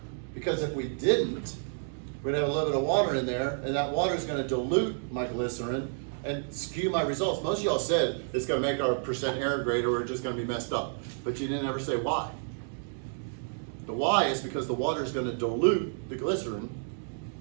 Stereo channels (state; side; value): silent; left; digital silence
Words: Because if we didn't, we'd have a little bit of water in there, and that water is going to dilute my glycerin and skew my results. Most of y'all said it's going to make our percent error greater, or we're just going to be messed up. But you didn't ever say why. The why is because the water is going to dilute the glycerin,